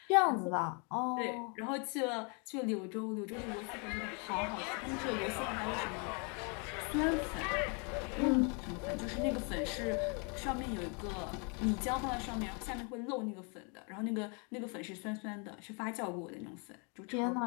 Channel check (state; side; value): quieter; right; 35.0 dB